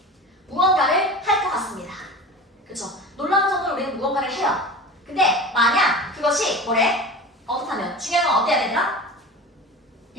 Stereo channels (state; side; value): normal; both; correlation 0.34